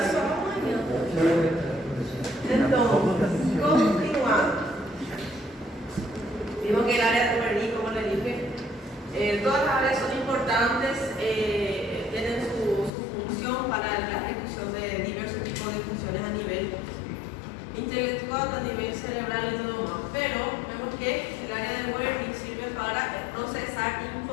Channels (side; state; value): right; drops out; at 12.9 s